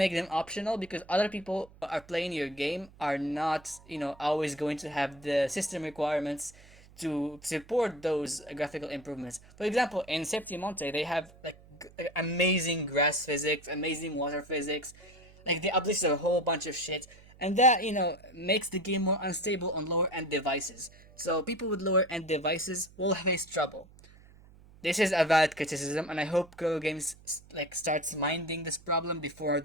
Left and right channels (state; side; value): noise; right; hum, 24 dB below the sound